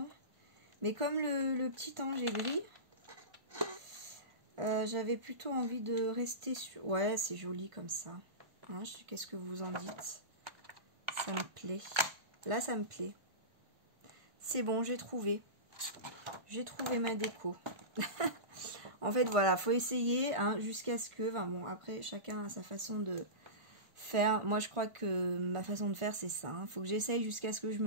Mais comme le petit ange est gris, j'avais plutôt envie de rester sur... Ouais, c'est joli comme ça. Hein, qu'est-ce que vous en dites? Ça me plaît. Là, ça me plaît. C'est bon, j'ai trouvé. J'ai trouvé ma déco. En fait, voilà, faut essayer hein, jusqu'à ce que... Enfin, bon, après, chacun a sa façon de faire. Moi, je crois que ma façon de faire, c'est ça. Hein. Faut que j'essaye jusqu'à ce que je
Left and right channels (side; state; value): left; late; 1.5 ms